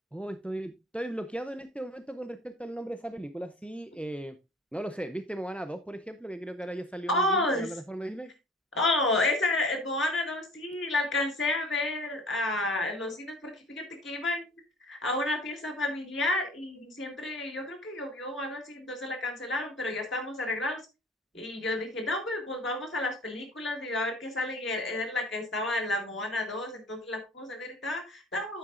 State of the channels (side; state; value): both; normal; correlation 0.47